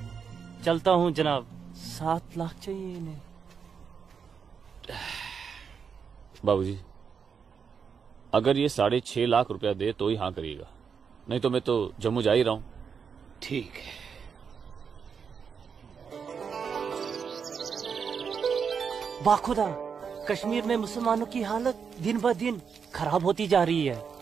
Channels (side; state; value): left; quieter; 6.4 dB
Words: चलता हूँ जनाब। 7 लाख चाहिए इन्हें। बाबूजी, अगर ये 6.5 लाख रुपया दे तो ही हाँ करिएगा, नहीं तो मैं तो जम्मू जा ही रहा हूँ। ठीक है। बाखुदा, कश्मीर में मुसलमानों की हालत दिन ब दिन खराब होती जा रही है।